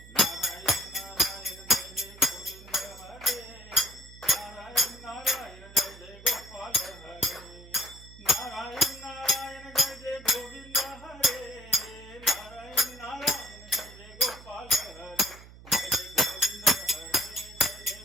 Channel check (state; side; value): noise; right; hum, 19 dB below the sound